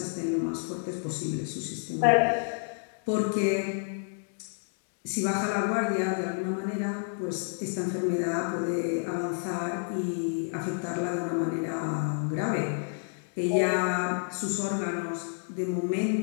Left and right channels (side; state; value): right; silent; 58 dB below the other